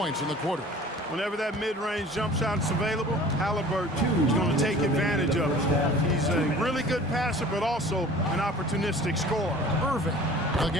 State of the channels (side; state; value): both; normal; correlation 0.45